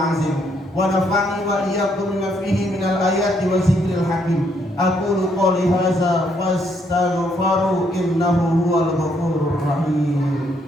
wa nafa'ani wa iyyakum bima fihi minal ayati wa zikril hakim. Aqulu qouli hadza fastaghfiru innahu huwal ghafurur rahim.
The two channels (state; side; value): normal; both; correlation 0.72